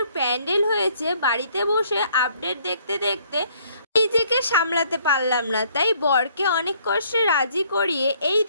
প্যান্ডেল হয়েছে, বাড়িতে বসে আপডেট দেখতে দেখতে নিজেকে সামলাতে পারলাম না। তাই বরকে অনেক কষ্টে রাজি করিয়ে এই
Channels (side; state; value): both; inverted; correlation -0.64